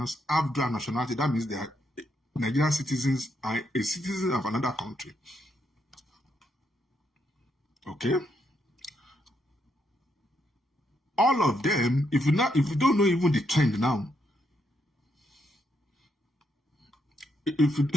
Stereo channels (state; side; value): normal; both; correlation 0.78